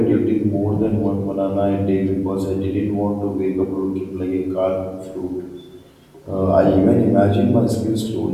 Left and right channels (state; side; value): identical; both; correlation 1.00